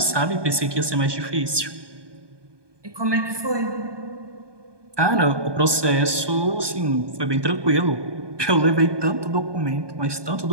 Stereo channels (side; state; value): left; late; 1.2 ms